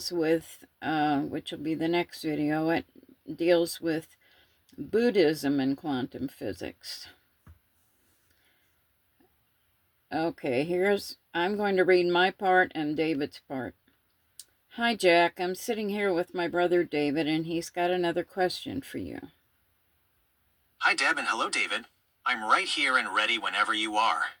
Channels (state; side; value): identical; both; correlation 1.00